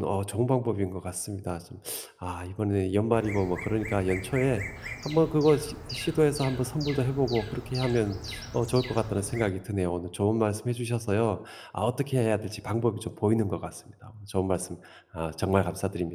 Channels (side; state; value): both; identical; correlation 1.00